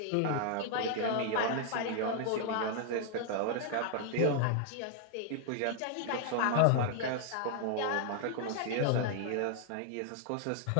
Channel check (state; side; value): different; both; correlation 0.00